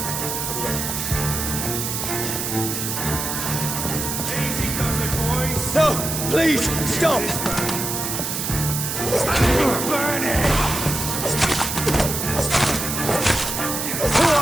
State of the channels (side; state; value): right; noise; hiss, 3 dB below the sound